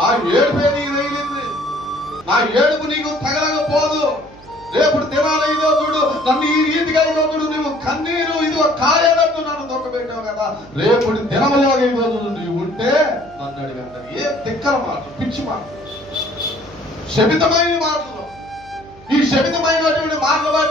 ఏడుపే నీకు తగిలింది, నా ఏడుపు నీకు తగలకపోదు. రేపు దినాలు ఇదో చూడు నన్ను ఈ రీతిగా ఇదో చూడు నువ్వు కన్నీరు ఇదిగో కాయనట్టు నన్ను దొక్కబెట్టావు కదా, రేపు దినములో ఇదో చూడు నీవు ఉంటే నన్ను అడిగి అంటారు. ఏ తిక్కల మాటలు, పిచ్చి మాటలు, శపితమైన మాటలు. ఈ శపితమైనటువంటి మాటలు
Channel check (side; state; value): right; noise; hum, 24 dB below the sound